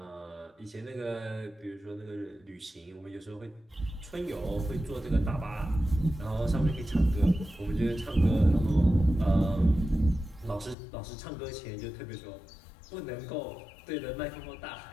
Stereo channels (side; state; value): right; drops out; at 10.8 s